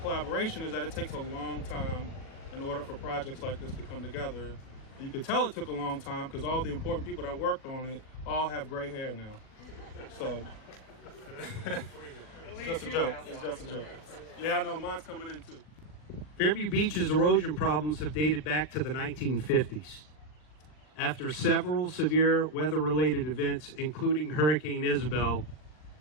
is that it takes a long time in order for projects like this to come together. You could tell it took a long time because all the important people that worked on it all have gray hair now. So it's just a joke. It's just a joke. Yeah, I know, mine's coming in too. Fairview Beach's erosion problems have dated back to the 1950s. After several severe weather-related events, including Hurricane Isabel,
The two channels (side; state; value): right; late; 40 ms